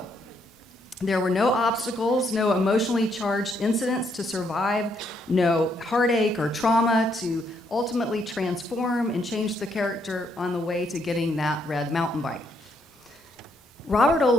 There were no obstacles, no emotionally charged incidents to survive, no heartache or trauma to ultimately transform and change the character on the way to getting that red mountain bike. Robert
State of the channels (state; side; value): normal; both; correlation 0.74